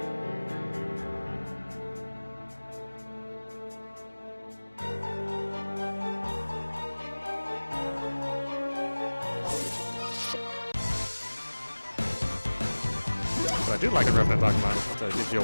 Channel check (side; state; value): both; inverted; correlation -1.00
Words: What I do like in Revan Dogma is it gives you